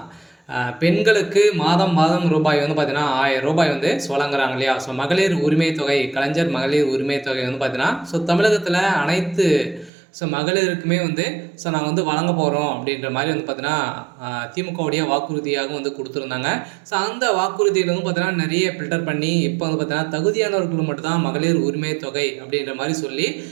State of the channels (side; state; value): left; drops out; at 9.9 s